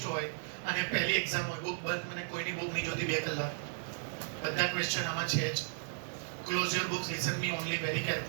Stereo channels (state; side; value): silent; left; 55 dB below the other